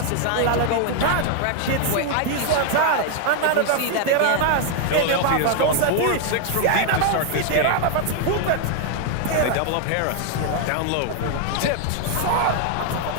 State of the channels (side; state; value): both; different; correlation 0.00